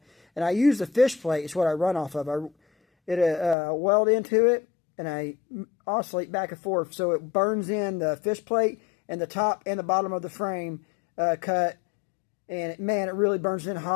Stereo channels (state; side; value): drops out; right; at 3.6 s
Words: And I use the fish plate, it's what I run off of. I weld into it, and I oscillate back and forth, so it burns in the fish plate and the top and the bottom of the frame cut. And man, it really burns in